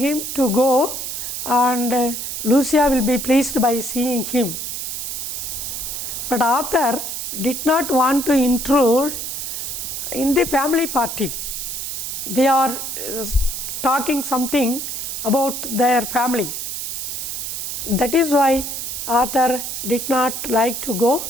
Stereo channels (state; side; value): noise; right; hiss, 5 dB below the sound